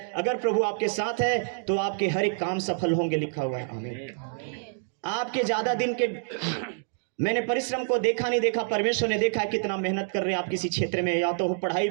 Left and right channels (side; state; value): left; silent; digital silence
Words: अगर प्रभु आपके साथ है तो आपके हर एक काम सफल होंगे, लिखा हुआ है। आमीन। आपके ज्यादा दिन के मैंने परिश्रम को देखा नहीं देखा, परमेश्वर ने देखा है कितना मेहनत कर रहे हैं आप किसी क्षेत्र में। या तो पढ़ाई